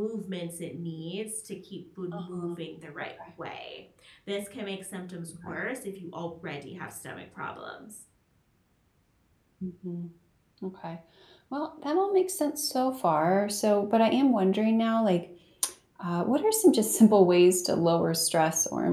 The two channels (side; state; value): both; identical; correlation 1.00